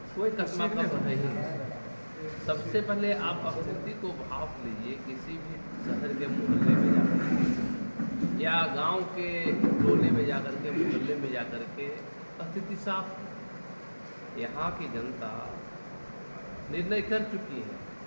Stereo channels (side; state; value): both; inverted; correlation -1.00